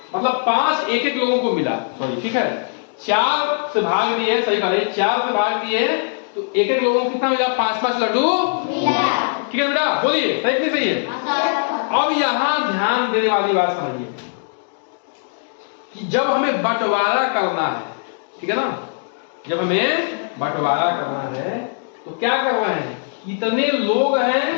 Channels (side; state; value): right; silent; digital silence